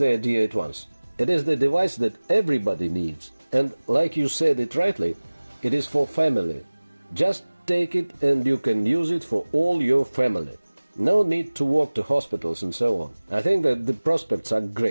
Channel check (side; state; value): both; inverted; correlation -1.00